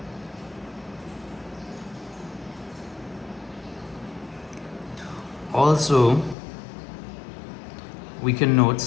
Also, we can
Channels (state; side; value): drops out; right; at 6.4 s